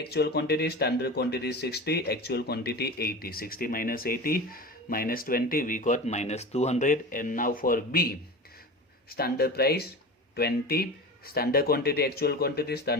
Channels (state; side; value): normal; both; correlation 0.31